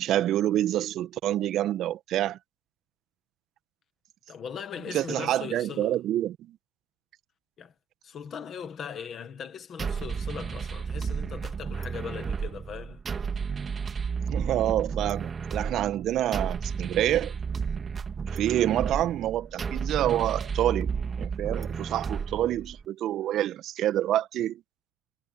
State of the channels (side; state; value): left; quieter; 9.1 dB